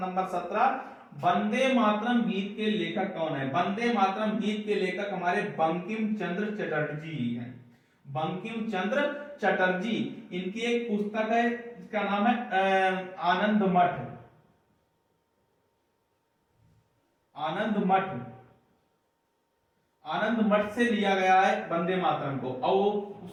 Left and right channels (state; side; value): identical; both; correlation 1.00